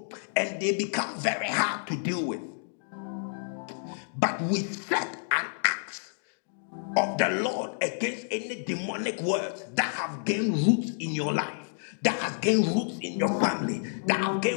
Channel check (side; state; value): right; silent; digital silence